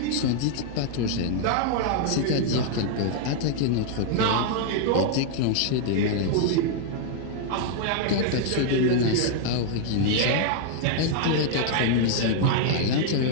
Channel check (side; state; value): both; different; correlation 0.00